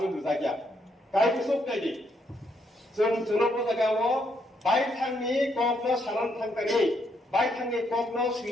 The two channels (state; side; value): normal; both; correlation 0.75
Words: dusakya. Kai kusuk tadi, Somoto jagawo, baik thangni kokno saran thangtani, baik thangni kokno